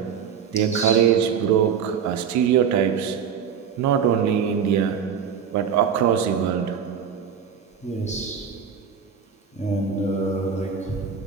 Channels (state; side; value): quieter; left; 7.3 dB